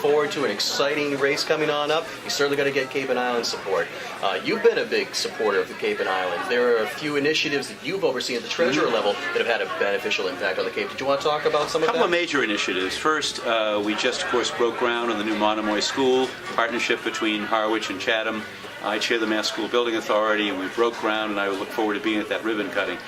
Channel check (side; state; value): both; identical; correlation 1.00